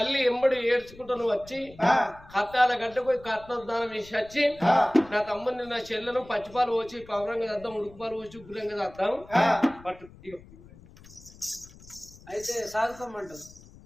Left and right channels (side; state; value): left; noise; rumble, 21 dB below the sound